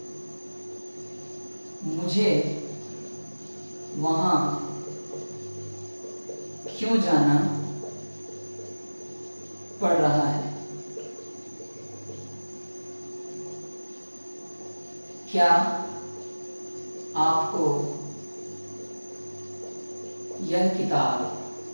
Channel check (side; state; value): both; inverted; correlation -1.00